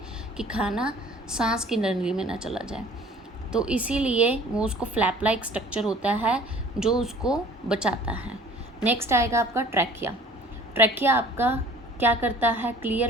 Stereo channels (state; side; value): normal; both; correlation 0.50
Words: कि खाना सांस की नली में ना चला जाए, तो इसीलिए वो उसको फ्लैप लाइक स्ट्रक्चर होता है जो उसको बचाता है। नेक्स्ट आएगा आपका ट्रैकिया। ट्रैकिया आपका क्या करता है,